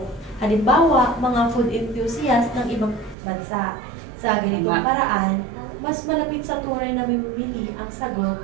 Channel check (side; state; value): left; drops out; at 3.2 s